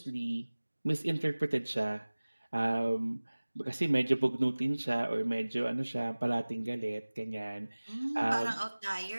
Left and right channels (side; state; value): both; inverted; correlation -1.00